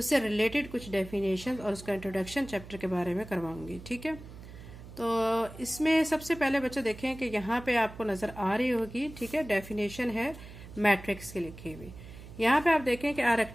रिलेटेड कुछ डेफिनेशन और उसका इंट्रोडक्शन चैप्टर के बारे में करवाऊंगी। ठीक है, तो इसमें सबसे पहले बच्चे देखें कि यहाँ पे आपको नजर आ रही होगी। ठीक है, डेफिनेशन है मैट्रिक्स की लिखी हुई। यहाँ पे आप देखें कि a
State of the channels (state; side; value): noise; right; hum, 15 dB below the sound